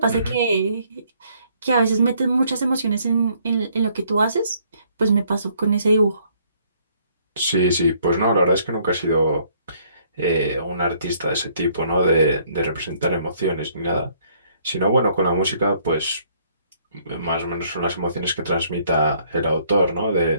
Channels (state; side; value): inverted; both; correlation -0.65